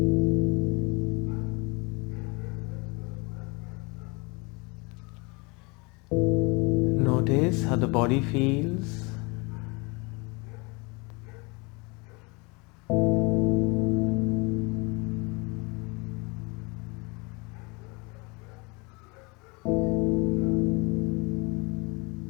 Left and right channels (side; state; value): right; quieter; 28.3 dB